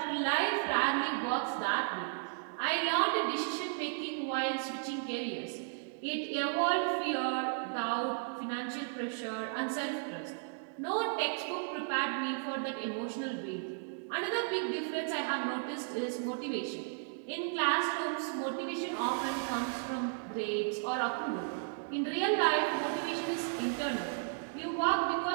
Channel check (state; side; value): silent; left; digital silence